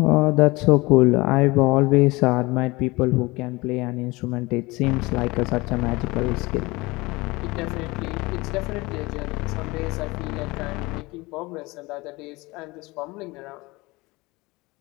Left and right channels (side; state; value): right; quieter; 22.8 dB